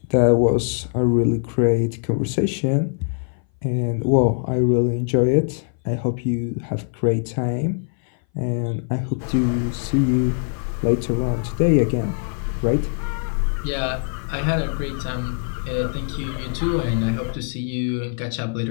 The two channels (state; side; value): silent; right; 60 dB below the other